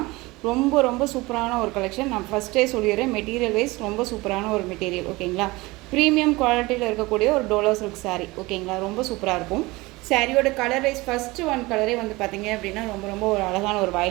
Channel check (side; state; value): left; quieter; 21.9 dB